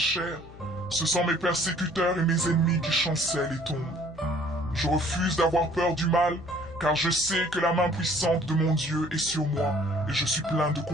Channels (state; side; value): noise; left; hum, 19 dB below the sound